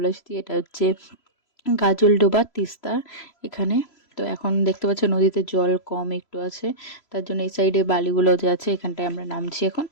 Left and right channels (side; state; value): right; late; 3.0 ms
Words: এসেছি। এটা হচ্ছে গাজলডোবা, তিস্তা এখানে। তো এখন দেখতে পাচ্ছ নদীতে জল কম একটু আছে, তার জন্য এই সাইডে বালিগুলো যে আছে এখানটায় আমরা নামছি এখন।